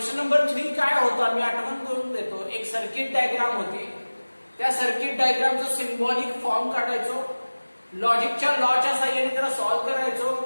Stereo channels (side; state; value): both; inverted; correlation -1.00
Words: नंबर 3 काय होता मी आठवण करून देतो. एक सर्किट डायग्राम होती. त्या सर्किट डायग्रामचं सिम्बॉलिक फॉर्म काढायचो, लॉजिकच्या लॉच्या साहाय्याने त्याला सॉल्व्ह करायचो